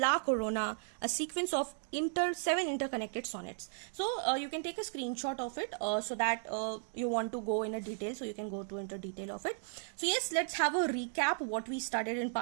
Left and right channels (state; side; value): silent; left; digital silence